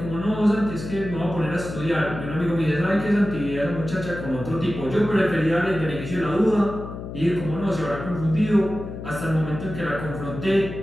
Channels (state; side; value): noise; left; hum, 9 dB below the sound